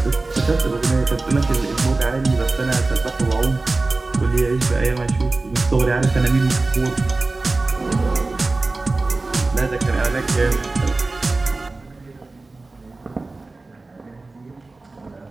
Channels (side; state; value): left; quieter; 3.4 dB